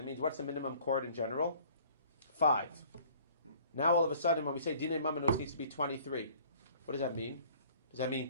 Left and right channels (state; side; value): inverted; both; correlation -0.53